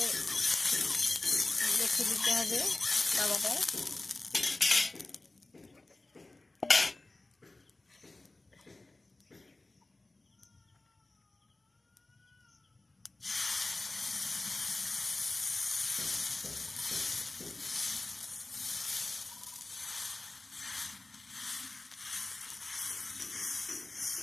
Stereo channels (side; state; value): right; quieter; 3.0 dB